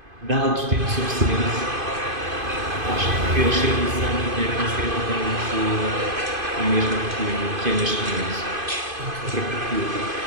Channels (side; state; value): left; late; 2.5 ms